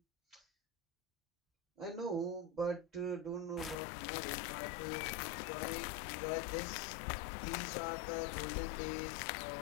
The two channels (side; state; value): right; drops out; at 3.8 s